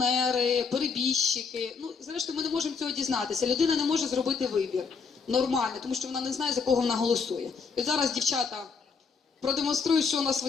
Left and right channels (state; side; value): quieter; right; 5.3 dB